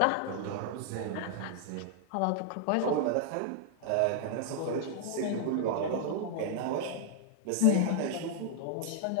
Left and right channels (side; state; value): both; different; correlation -0.01